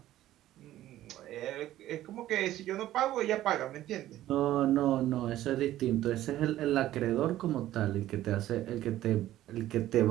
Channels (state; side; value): quieter; left; 13.9 dB